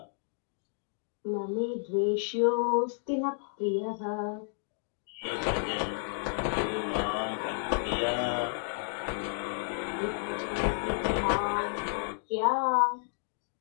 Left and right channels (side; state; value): right; silent; digital silence